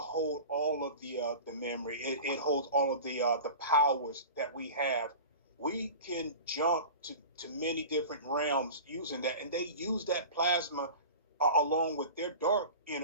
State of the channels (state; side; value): inverted; both; correlation -0.35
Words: all of the memory. It holds all of the powers that we have. We can jump to many different realms using that, and they use that plasma along with their dark